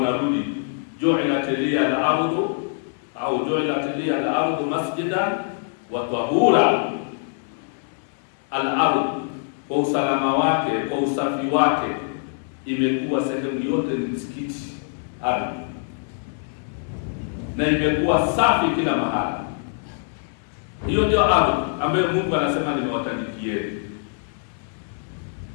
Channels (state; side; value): silent; right; digital silence